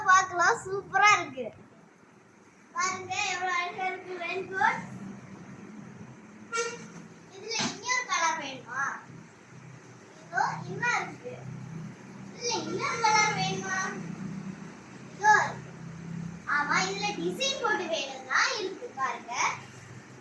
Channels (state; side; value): identical; both; correlation 1.00